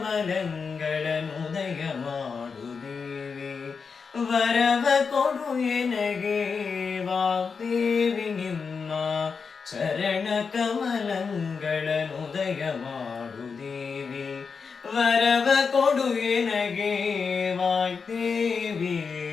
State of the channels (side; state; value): right; quieter; 5.4 dB